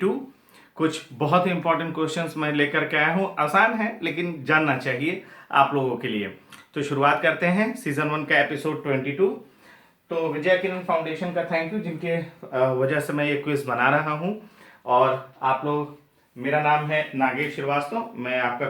कुछ बहुत ही इंपॉर्टेंट क्वेश्चंस मैं लेकर के आया हूँ। आसान है लेकिन जानना चाहिए आप लोगों के लिए। तो शुरुआत करते हैं सीजन 1 का एपिसोड 22। तो विजय किरण फाउंडेशन का थैंक यू, जिनके वजह से मैं ये क्विज बना रहा हूँ। और आप लोग, मेरा नाम है नागेश श्रीवास्तव, मैं आपका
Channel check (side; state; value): both; identical; correlation 1.00